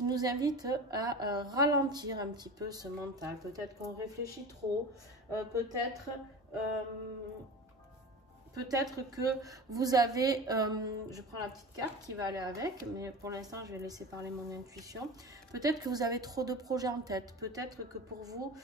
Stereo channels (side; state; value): both; normal; correlation 0.32